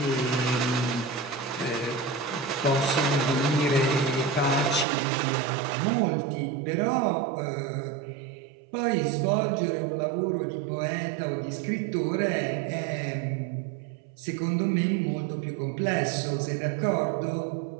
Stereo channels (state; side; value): drops out; left; at 4.9 s